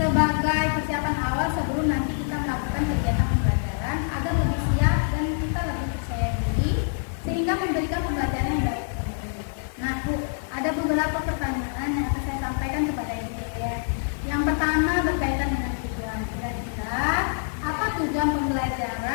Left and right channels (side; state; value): right; silent; 61 dB below the other